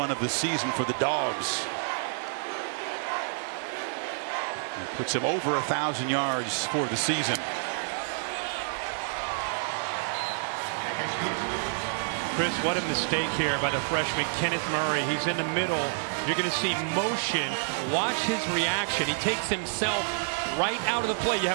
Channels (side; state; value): left; silent; digital silence